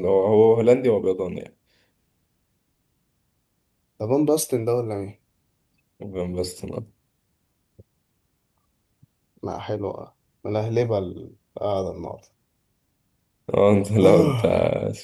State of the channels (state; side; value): identical; both; correlation 1.00